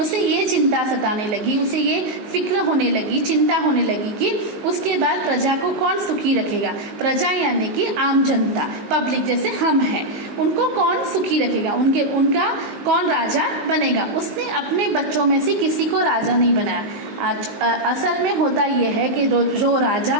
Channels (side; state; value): left; late; 19 ms